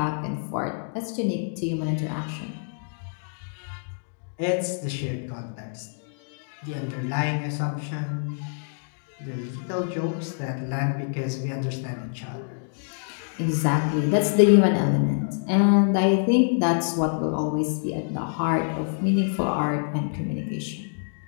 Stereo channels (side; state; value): right; silent; digital silence